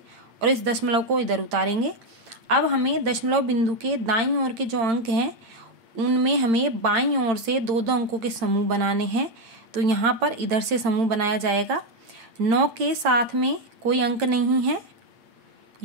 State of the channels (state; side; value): late; left; 8.8 ms